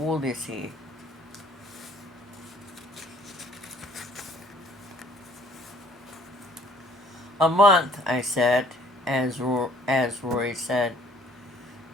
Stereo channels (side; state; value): both; normal; correlation 0.58